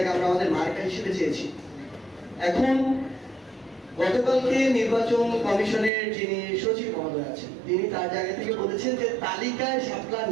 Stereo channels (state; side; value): drops out; left; at 5.9 s